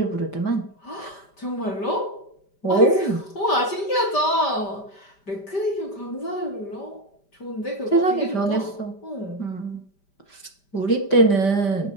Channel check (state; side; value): late; right; 5.1 ms